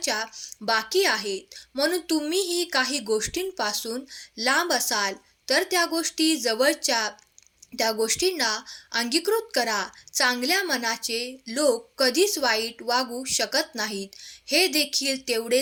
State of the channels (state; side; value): identical; both; correlation 1.00